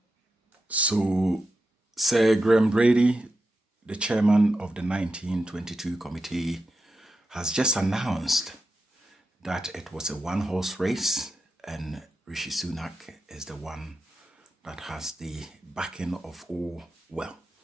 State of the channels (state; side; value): normal; both; correlation 0.88